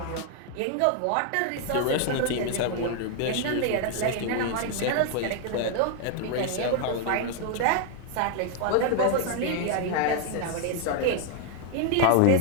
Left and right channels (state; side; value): different; both; correlation 0.00